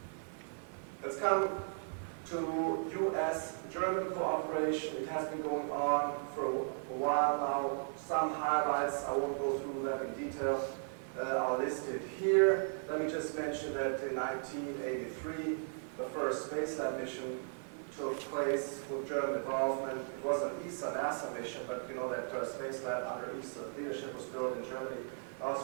Let's come to US-German cooperation. It has been going on for a while now. Some highlights, I won't go through them in detail, are listed here. Let me just mention that in 1983, the first space lab mission took place with German involvement. It was an ESA-NASA mission, but you know that space lab under ESA leadership was built in Germany.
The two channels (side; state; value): left; silent; 53 dB below the other